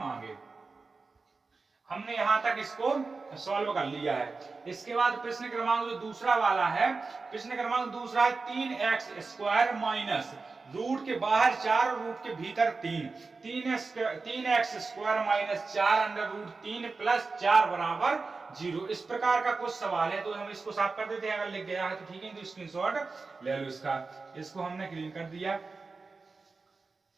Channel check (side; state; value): left; quieter; 4.1 dB